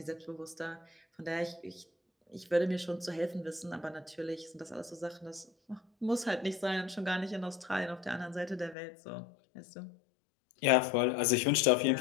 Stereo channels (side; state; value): right; drops out; at 8.8 s